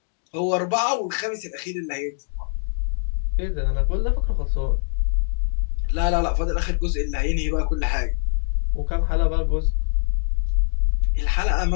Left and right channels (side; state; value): right; silent; digital silence